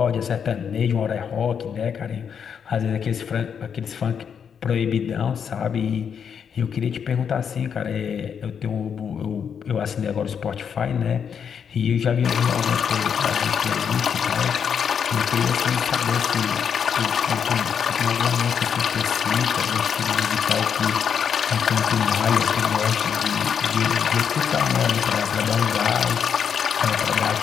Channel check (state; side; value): quieter; right; 7.4 dB